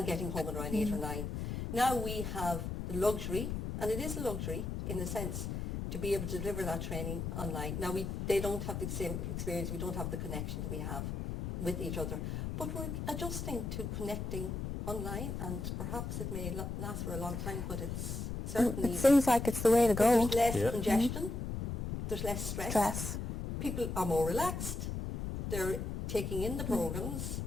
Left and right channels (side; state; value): left; noise; rumble, 4 dB below the sound